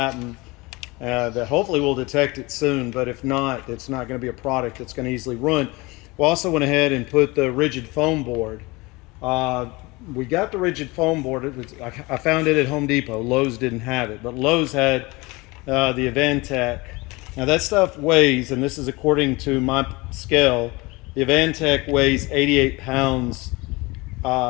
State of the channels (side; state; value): right; quieter; 23.9 dB